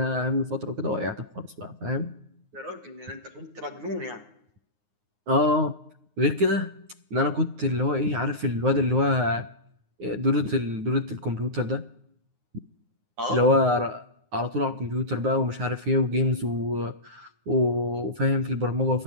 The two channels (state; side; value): late; left; 9.6 ms